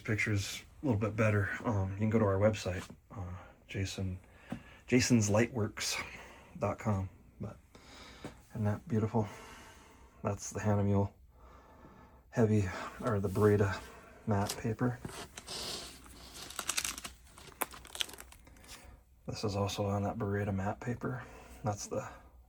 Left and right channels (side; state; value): both; identical; correlation 1.00